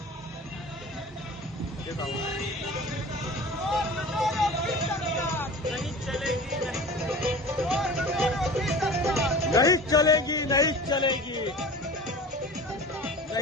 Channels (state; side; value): normal; both; correlation 0.38